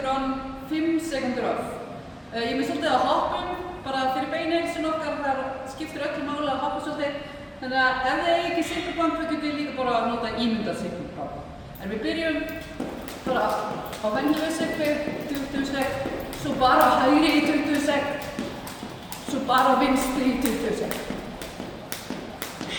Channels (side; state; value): both; identical; correlation 1.00